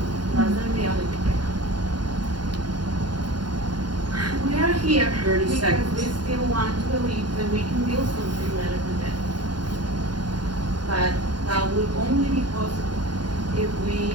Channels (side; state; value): left; late; 0.71 ms